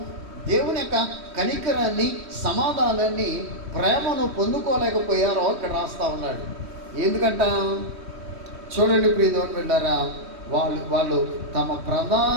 దేవుని యొక్క కనికరాన్ని, సమాధానాన్ని, ప్రేమను పొందుకోలేకపోయారో ఇక్కడ రాస్తా ఉన్నాడు. ఎందుకంట? చూడండి ప్రియదేవుని బిడ్డలారా, వాళ్ళు తమ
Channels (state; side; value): late; left; 3.1 ms